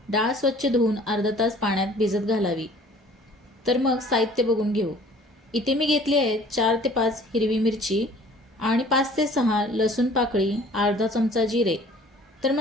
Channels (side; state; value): both; normal; correlation 0.52